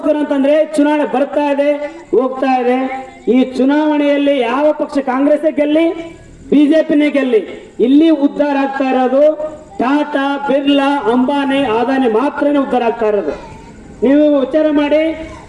ಅಂತಂದ್ರೆ ಚುನಾವಣೆ ಬರ್ತಾ ಇದೆ, ಹೋಗ್ತಾ ಇದೆ. ಈ ಚುನಾವಣೆಯಲ್ಲಿ ಯಾವ ಪಕ್ಷ, ಕಾಂಗ್ರೆಸ್ ಗೆಲ್ಲಿ, ಬಿಜೆಪಿನೇ ಗೆಲ್ಲಿ, ಇಲ್ಲಿ ಉದ್ಧಾರ ಆಗ್ತಾ ಇರೋದು ಟಾಟಾ, ಬಿರ್ಲಾ, ಅಂಬಾನಿ, ಅದಾನಿ ಮಾತ್ರನೇ ಉದ್ಧಾರ ಆಗ್ತಾ ಇರೋದು. ನೀವು ವಿಚಾರ ಮಾಡಿ,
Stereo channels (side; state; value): both; identical; correlation 1.00